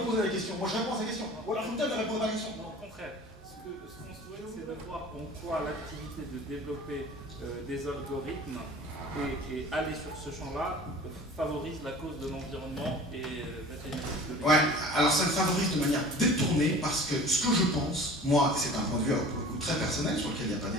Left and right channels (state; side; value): normal; both; correlation 0.43